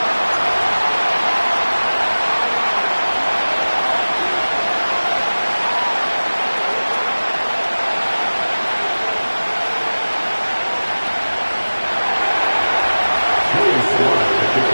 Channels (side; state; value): both; inverted; correlation -1.00